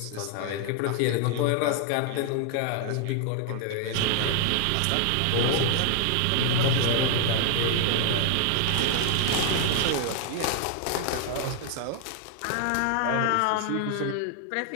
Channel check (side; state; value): both; different; correlation 0.00